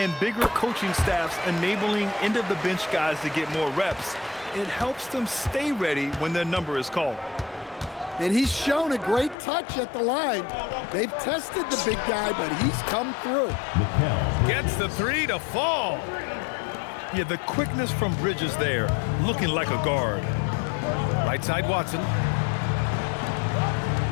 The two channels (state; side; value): drops out; right; at 9.3 s